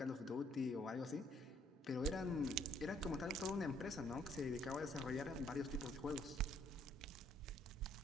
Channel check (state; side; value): normal; both; correlation 0.66